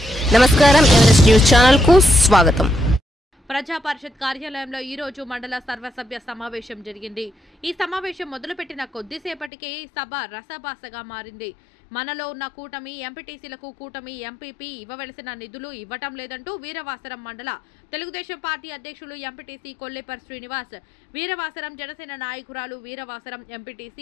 నమస్కారం, Everest news channel కు స్వాగతం. ప్రజా పరిషత్ కార్యాలయంలో ఈ రోజు మండల సర్వసభ్య సమావేశం జరిగింది. ఈ సమావేశం మొదలుపెట్టిన కొద్దిసేపటికే సభ రసభాసగా మారింది. మనలో ఉన్న కూటమి ఎంపీటీసీలకు కూటమి ఎంపీపీ ఇవ్వవలసిన నిధులు ఇవ్వటం లేదంటూ వీరవాసరం మండల తెలుగుదేశం పార్టీ అధ్యక్షులు ఎంపీటీసీ కొల్లేపర్ శ్రీనివాస్, వీరవాసరం జనసేన నాయకురాలు వీరవాసరం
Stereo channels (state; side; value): drops out; right; at 9.5 s